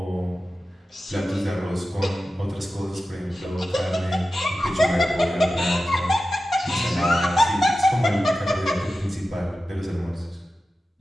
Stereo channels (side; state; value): both; normal; correlation 0.93